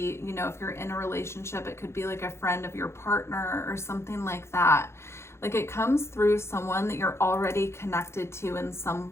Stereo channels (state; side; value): late; right; 0.13 ms